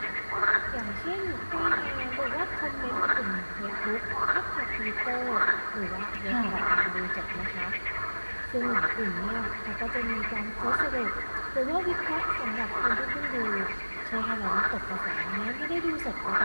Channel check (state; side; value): inverted; both; correlation -1.00